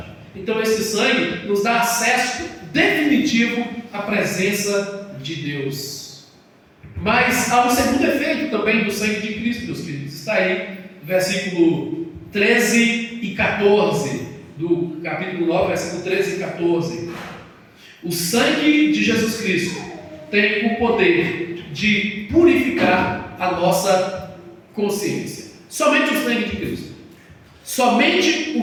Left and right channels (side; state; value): both; identical; correlation 1.00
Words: Então esse sangue nos dá acesso definitivo à presença de Deus. Mas há um segundo efeito também do sangue de Cristo, meus queridos. Está aí, versículo 13 e 14, do capítulo 9, versículo 13 e 14. O sangue de Jesus Cristo tem o poder de purificar a nossa consciência. Somente o sangue de Cristo. Somente o